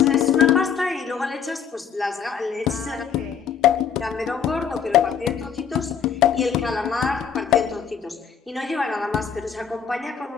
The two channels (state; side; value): quieter; right; 7.4 dB